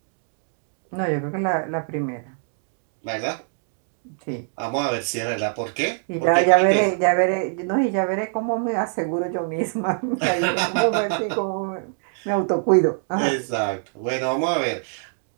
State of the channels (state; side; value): silent; left; digital silence